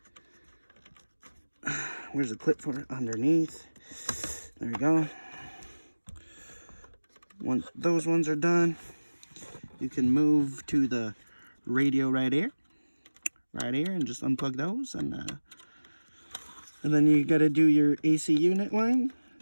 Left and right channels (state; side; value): inverted; both; correlation -1.00